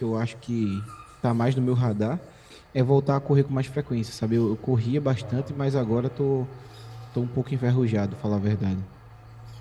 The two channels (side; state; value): both; identical; correlation 1.00